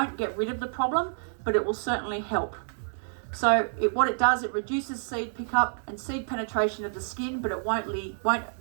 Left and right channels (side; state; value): left; silent; digital silence